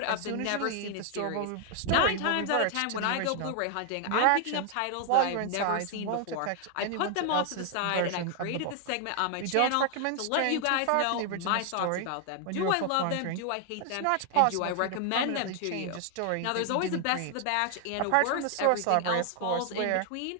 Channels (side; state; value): both; different; correlation 0.00